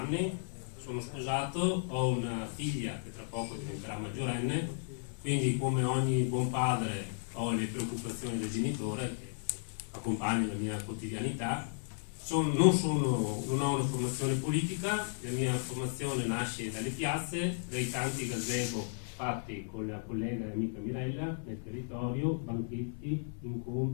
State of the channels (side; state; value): right; silent; 55 dB below the other